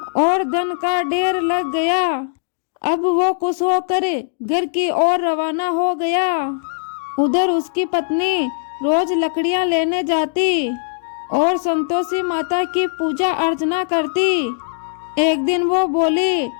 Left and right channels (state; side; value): silent; right; digital silence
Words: और धन का ढेर लग गया। अब वो खुश होकर घर की ओर रवाना हो गया। उधर उसकी पत्नी रोज लकड़ियां लेने जाती और संतोषी माता की पूजा अर्चना करती। एक दिन वो बोली,